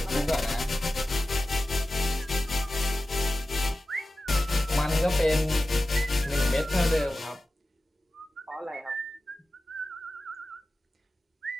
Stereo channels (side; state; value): both; normal; correlation 0.94